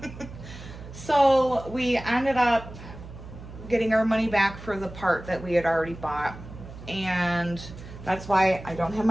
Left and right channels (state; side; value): noise; right; hum, 14 dB below the sound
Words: So we ended up getting our money back for the part that we had already bought. And that's why I don't have